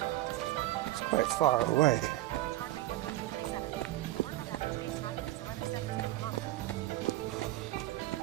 It's quite far away.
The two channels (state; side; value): quieter; left; 16.1 dB